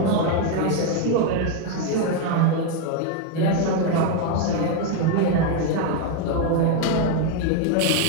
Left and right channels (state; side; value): different; both; correlation 0.01